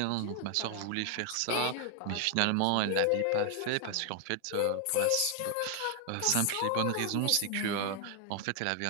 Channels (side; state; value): both; different; correlation 0.00